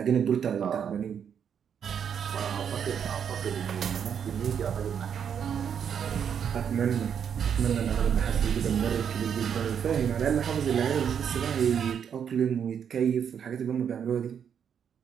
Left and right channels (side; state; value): left; quieter; 7.9 dB